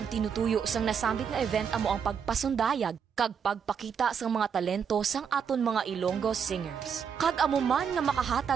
tinutuyo sang nasambit nga event amo ang pagpasundayag kag pagpakita sang mga talento sang aton mga Ilonggo singers. Kag amo man nga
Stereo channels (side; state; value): left; quieter; 7.1 dB